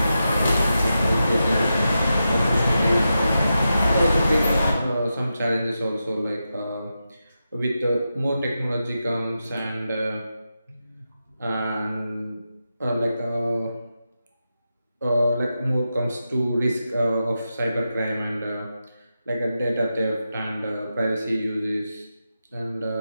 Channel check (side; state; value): both; inverted; correlation -0.89